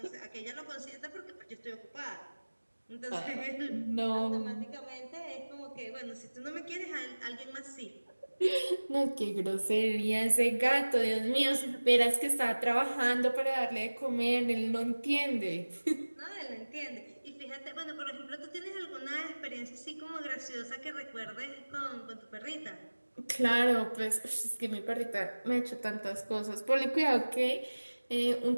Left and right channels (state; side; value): inverted; both; correlation -1.00